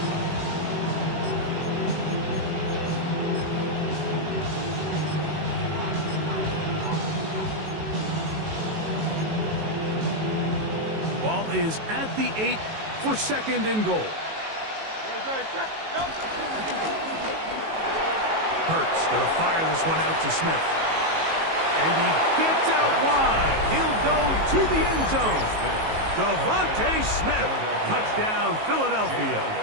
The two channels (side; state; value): left; late; 19 ms